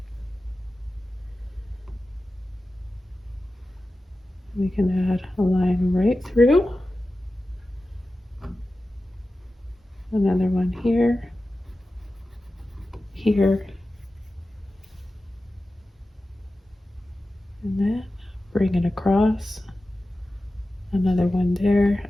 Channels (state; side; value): normal; both; correlation 0.94